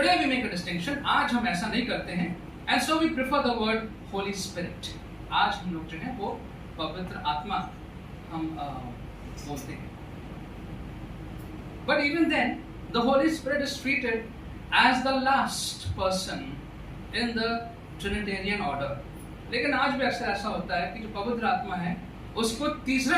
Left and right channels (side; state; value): both; identical; correlation 1.00